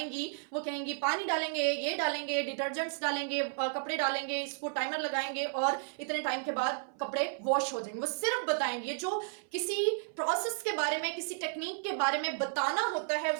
वो कहेंगी पानी डालेंगे, ये डालेंगे, डिटर्जेंट्स डालेंगे, कपड़े डालेंगे, इसको टाइमर लगाएंगे और इतने टाइम के बाद कपड़े वॉश हो जाएंगे. वो सिर्फ बताएंगे. जो किसी प्रोसेस के बारे में, किसी टेक्निक के बारे में बताना होता है,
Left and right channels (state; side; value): silent; left; 56 dB below the other